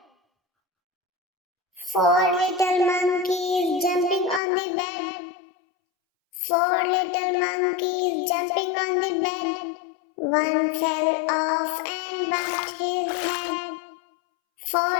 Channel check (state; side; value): drops out; right; at 4.4 s